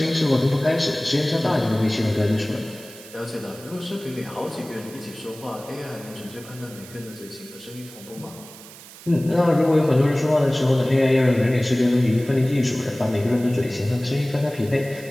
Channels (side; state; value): right; noise; hiss, 18 dB below the sound